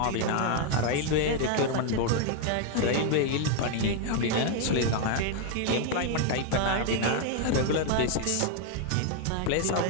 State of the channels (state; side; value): different; both; correlation 0.00